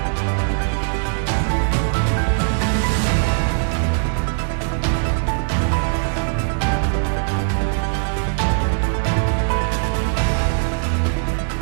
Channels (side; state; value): left; silent; 62 dB below the other